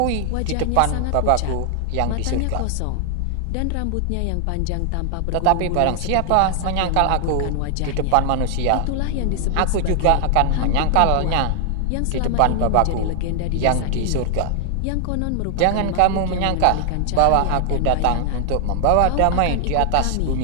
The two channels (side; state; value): both; different; correlation 0.00